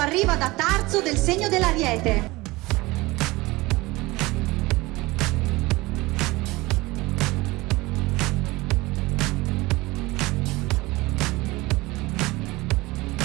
da Tarzo, del segno dell'Ariete.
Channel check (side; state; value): left; quieter; 21.2 dB